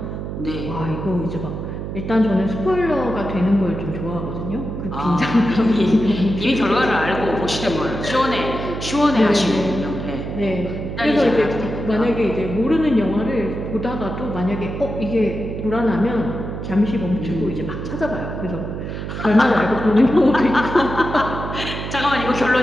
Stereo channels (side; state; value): right; noise; hum, 6 dB below the sound